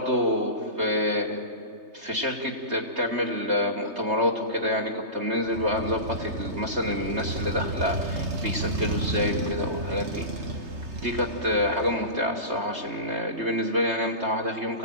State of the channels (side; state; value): left; late; 3.3 ms